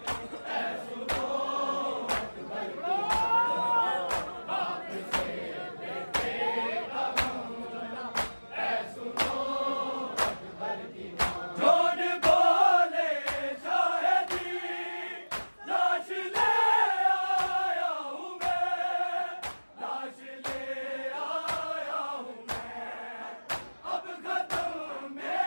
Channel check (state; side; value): inverted; both; correlation -1.00